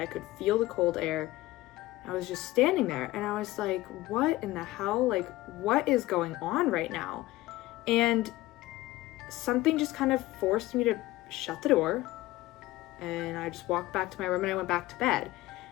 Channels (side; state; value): right; quieter; 17.6 dB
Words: could feel the cold air. I was just standing there and I was like, what in the hell? Like, what is going on right now? And something just kind of forced me to shut the door, and I just walked back to my room and I went back to bed.